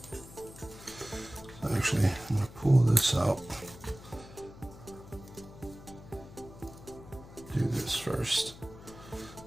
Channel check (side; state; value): left; noise; hum, 17 dB below the sound